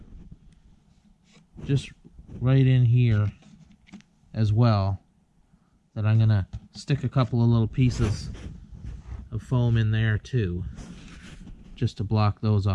just right in here as well that I'm gonna stick a couple of little pieces of foam in there too, just to block those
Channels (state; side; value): identical; both; correlation 1.00